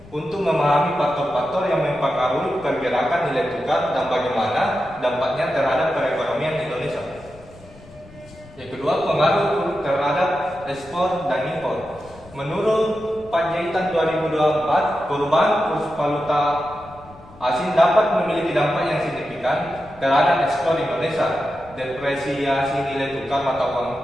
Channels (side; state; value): left; noise; rumble, 22 dB below the sound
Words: untuk memahami faktor-faktor yang mempengaruhi pergerakan nilai tukar dan bagaimana dampaknya terhadap perekonomian Indonesia. Yang kedua, pengaruh terhadap ekspor dan impor. Menurut Panjaitan 2024, perubahan kurs valuta asing dapat memiliki dampak yang signifikan terhadap ekspor Indonesia. Depresiasi nilai tukar mata